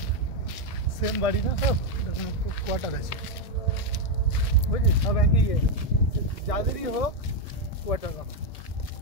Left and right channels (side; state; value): right; late; 1.6 ms